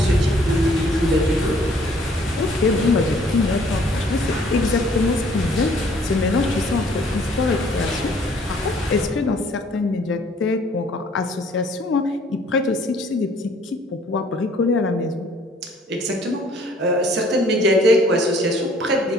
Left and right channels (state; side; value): normal; both; correlation 0.59